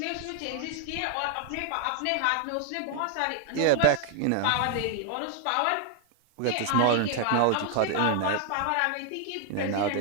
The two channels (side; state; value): both; different; correlation 0.00